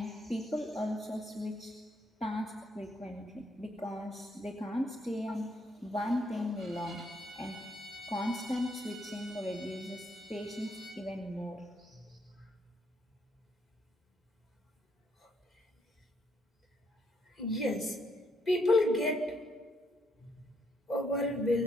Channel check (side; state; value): both; normal; correlation 0.74